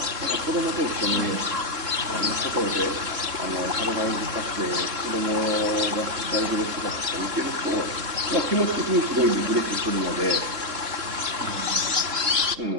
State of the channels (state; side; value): late; left; 3.7 ms